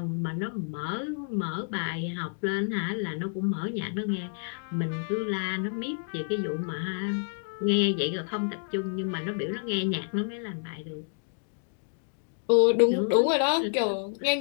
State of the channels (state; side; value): silent; right; digital silence